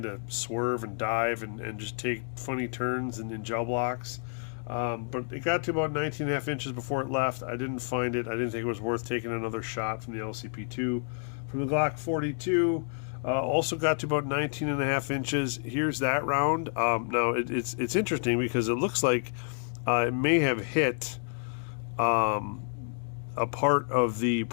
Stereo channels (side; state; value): right; silent; 58 dB below the other